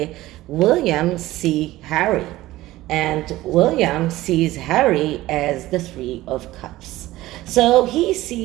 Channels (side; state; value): left; quieter; 16.9 dB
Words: William see Harry? And William sees Harry as the Three of Cups. So he